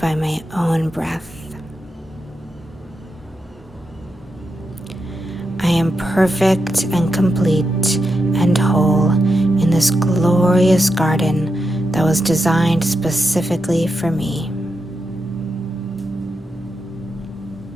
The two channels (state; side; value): normal; both; correlation 0.86